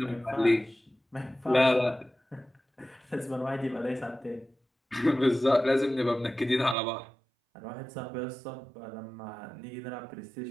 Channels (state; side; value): drops out; left; at 6.8 s